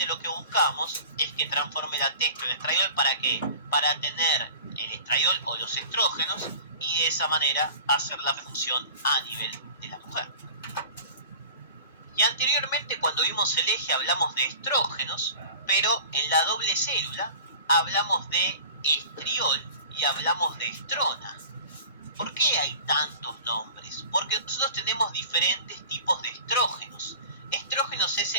lo que buscamos es que transforme la testo en estradiol. ¿Para qué? Para tener el estradiol o los estrógenos y de esa manera hacer la función a nivel de la mujer. Y anteriormente, cuando vimos el eje, hablamos de estrógenos, pero en la doble célula hablamos de estriol y hablamos de estrona. ¿Por qué hay tantos nombres? Porque nosotros tenemos diferentes tipos de estrógenos. Estrógenos es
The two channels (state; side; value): inverted; both; correlation -0.41